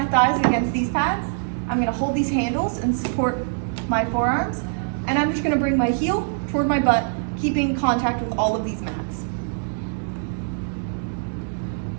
thighs against these pads. I'm gonna hold these handles and support my forearms, and I'm just gonna bring my heel toward my butt, keeping contact with all of these mats.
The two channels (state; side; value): silent; left; digital silence